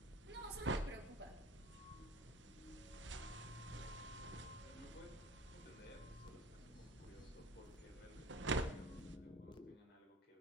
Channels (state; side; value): normal; both; correlation 0.42